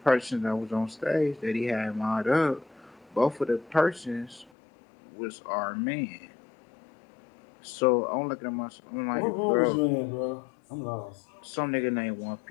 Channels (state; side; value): drops out; right; at 4.5 s